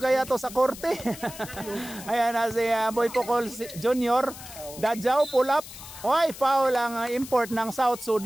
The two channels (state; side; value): noise; left; hiss, 14 dB below the sound